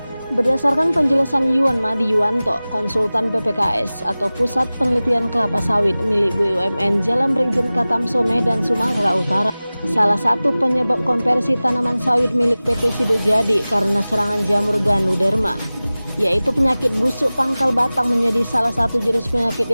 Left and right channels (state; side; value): inverted; both; correlation -0.98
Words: Berdasarkan penjelasan Yuan Madi Yuwanto, konsultan PPKS atau Pusat Penelitian Kelapa Sawit milik BUMN Jalan Brigjen Katamso Medan, Sumatera Utara, salah satu penyebab konversi tanaman sawit milik PT Sido Jadi karena serangan jamur Ganoderma, yaitu penyakit busuk pangkal batang, menjadi salah satu jenis penyakit